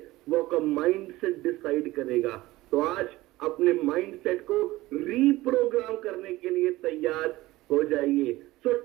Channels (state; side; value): quieter; left; 18.2 dB